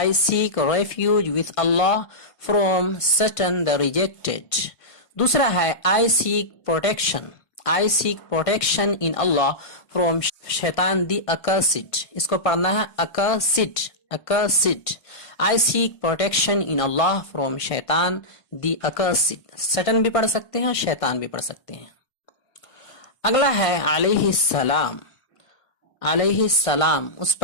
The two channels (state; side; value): late; right; 1.6 ms